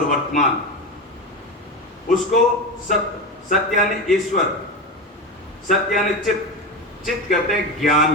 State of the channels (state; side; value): normal; both; correlation 0.20